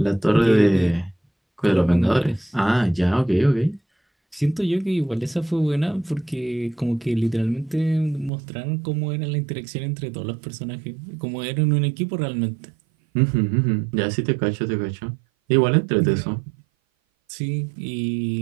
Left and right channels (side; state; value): left; drops out; at 8.3 s